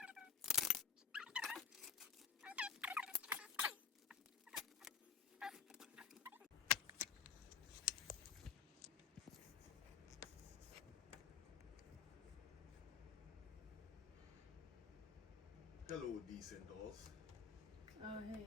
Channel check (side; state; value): right; quieter; 7.0 dB